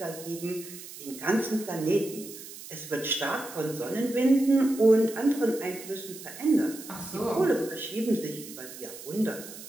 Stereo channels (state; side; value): noise; right; hiss, 14 dB below the sound